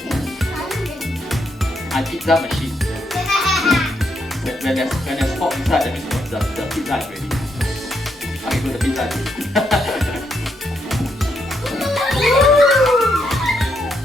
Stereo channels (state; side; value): normal; both; correlation 0.78